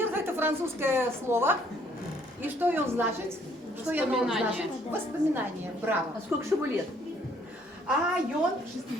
– это французское слово. И что он значит? Что оно значит? Воспоминание. Браво. А сколько же ему лет? А он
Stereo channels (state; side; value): normal; both; correlation 0.64